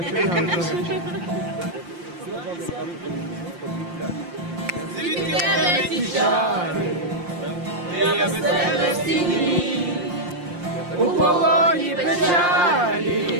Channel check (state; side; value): late; left; 5.7 ms